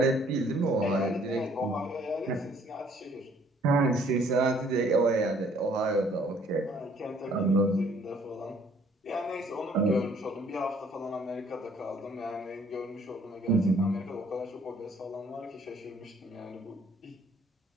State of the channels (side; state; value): both; normal; correlation 0.61